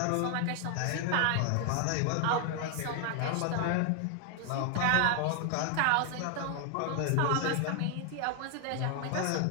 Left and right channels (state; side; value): different; both; correlation 0.00